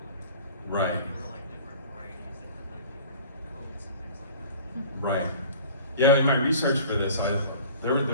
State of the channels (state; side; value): inverted; both; correlation -0.45